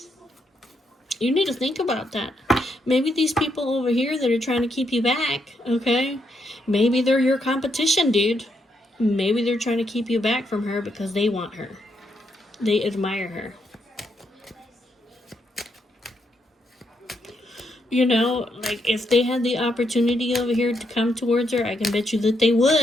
You need to think about that. Maybe these people over here that are trying to keep you back, okay? Maybe they're your competition, dude. Maybe they're trying to keep you back from her because they want her. They admire her. You know, like, if they had the opportunity over here to come towards her, I can bet you that they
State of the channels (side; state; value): both; normal; correlation 0.78